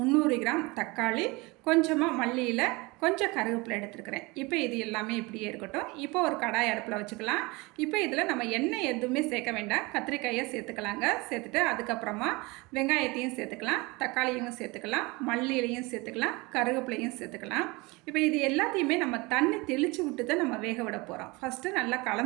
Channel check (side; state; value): left; quieter; 24.7 dB